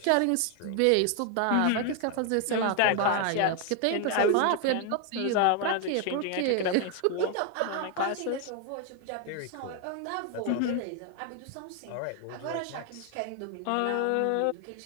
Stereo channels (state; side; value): different; both; correlation 0.01